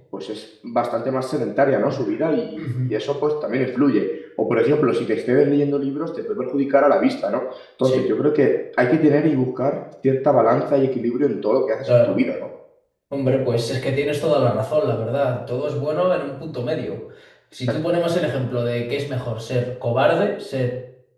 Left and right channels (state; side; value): identical; both; correlation 1.00